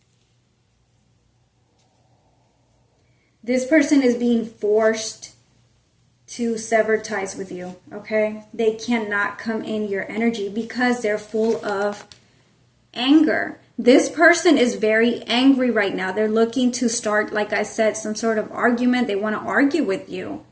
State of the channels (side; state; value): both; identical; correlation 1.00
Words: This person is being forced to sever ties with you, okay? They cannot come in your energy because they're full of anger. This person is very angry right now. They're looking to start, like I said, some sort of argument. They want to argue with you.